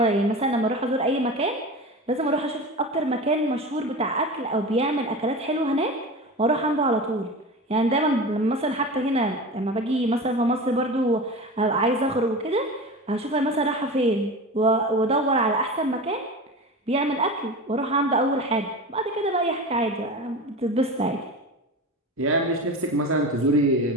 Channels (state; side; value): normal; both; correlation 0.29